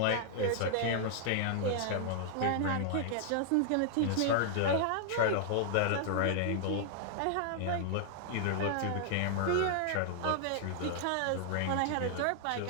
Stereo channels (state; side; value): different; both; correlation -0.01